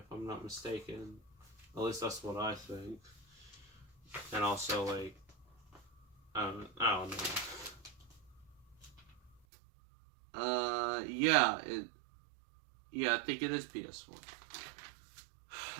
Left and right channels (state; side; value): drops out; left; at 9.4 s